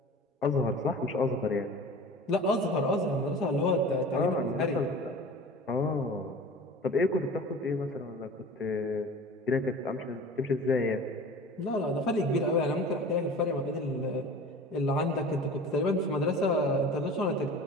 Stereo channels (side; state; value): both; normal; correlation 0.39